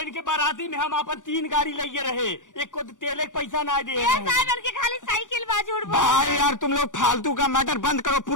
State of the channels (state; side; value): late; right; 0.87 ms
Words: बाराती में हम अपन 3 गाड़ी लेके रहे, एक को तेल एक पैसा ना दे ये रहे। साहब इनके खाली साइकिल बा झूठ बोल। भाई यार तुम लोग फालतू का मैटर बंद करो,